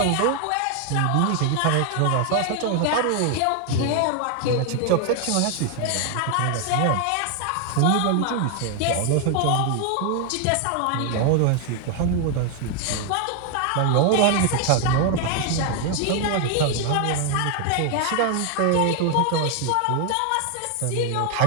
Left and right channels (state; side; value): different; both; correlation 0.01